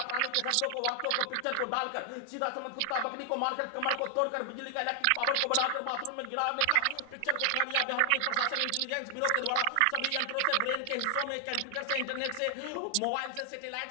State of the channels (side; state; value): both; different; correlation 0.00